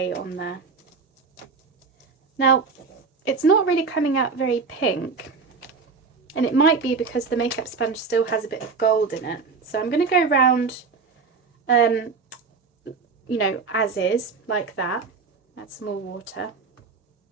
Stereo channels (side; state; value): left; quieter; 4.9 dB